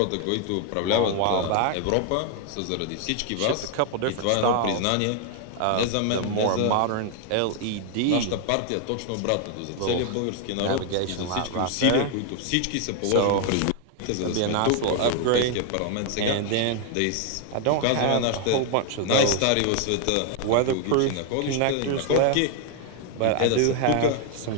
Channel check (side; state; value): both; different; correlation 0.00